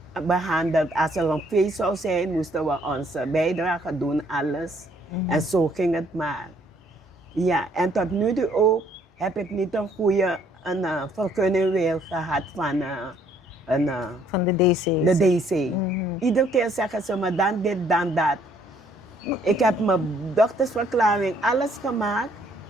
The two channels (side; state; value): both; normal; correlation 0.64